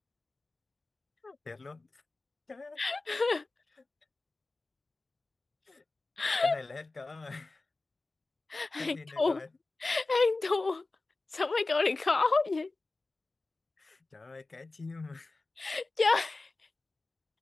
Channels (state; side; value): quieter; right; 3.4 dB